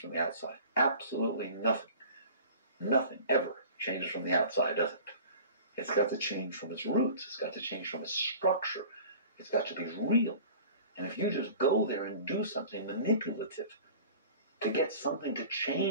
the outside. Absolutely nothing. Nothing ever changes from the outside, does it? It's got to change from its roots. It's got to change from its structure. It's got to be real. And if you just go there and do something manipulative to get something to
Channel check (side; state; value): both; inverted; correlation -0.43